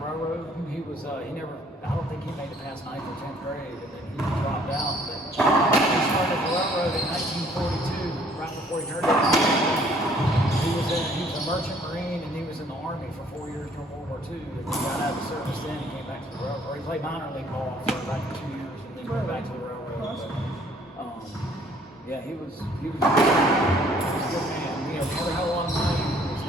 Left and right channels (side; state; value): both; normal; correlation 0.60